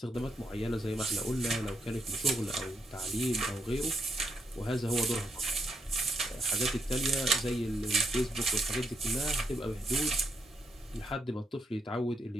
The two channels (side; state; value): both; normal; correlation 0.79